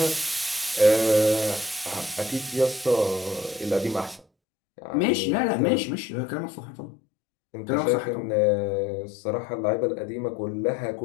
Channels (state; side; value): drops out; right; at 4.2 s